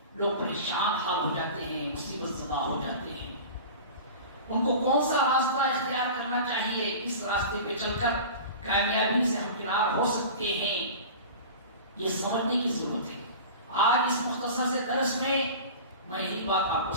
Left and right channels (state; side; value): inverted; both; correlation -0.35